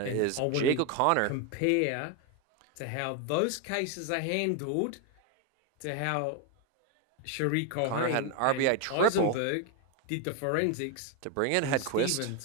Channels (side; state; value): both; different; correlation 0.01